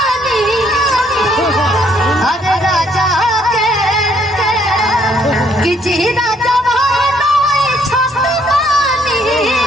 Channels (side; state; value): both; normal; correlation 0.68